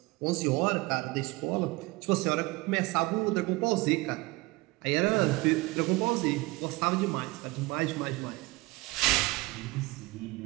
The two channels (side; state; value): left; quieter; 22.3 dB